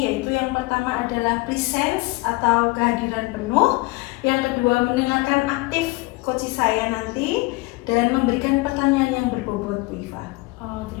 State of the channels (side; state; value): right; quieter; 23.2 dB